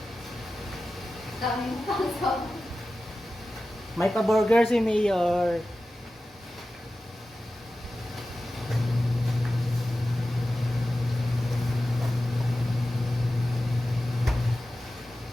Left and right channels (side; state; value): both; normal; correlation 0.94